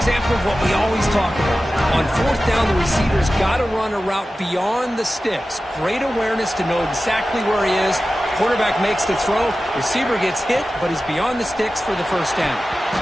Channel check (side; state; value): both; normal; correlation 0.94